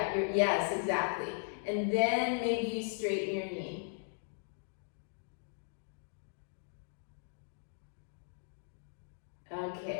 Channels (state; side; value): silent; right; digital silence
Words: exactly. And then maybe you straighten your knee.